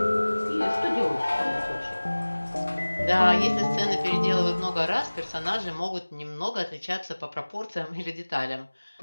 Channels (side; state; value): both; inverted; correlation -1.00